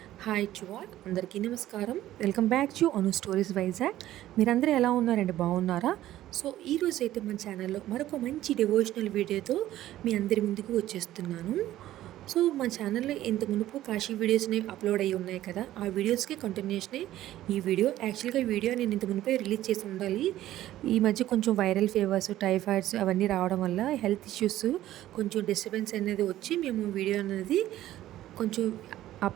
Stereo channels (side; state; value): left; quieter; 14.0 dB